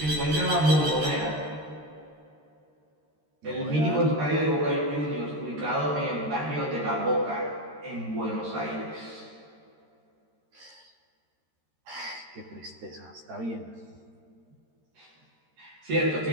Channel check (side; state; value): left; late; 13 ms